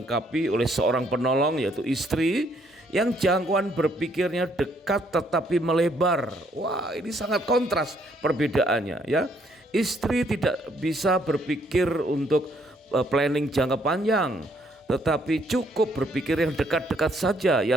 oleh seorang penolong, yaitu istri, yang jangkauan berpikirnya dekat tetapi melebar. Wah, ini sangat kontras perbedaannya, ya. Istri tidak bisa berpikir untuk planning jangka panjang, tetapi cukup berpikir yang dekat-dekat saja,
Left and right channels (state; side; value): normal; both; correlation 0.68